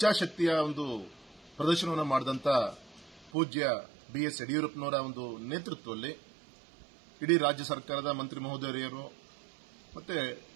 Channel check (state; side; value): drops out; left; at 3.3 s